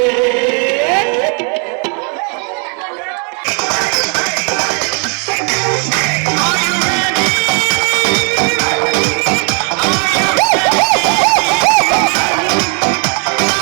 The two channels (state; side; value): quieter; left; 39.2 dB